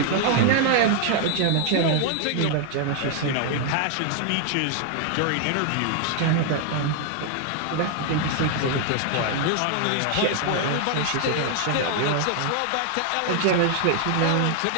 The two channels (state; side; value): different; both; correlation 0.00